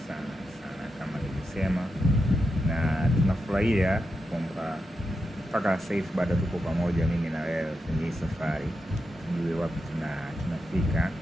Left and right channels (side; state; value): both; normal; correlation 0.87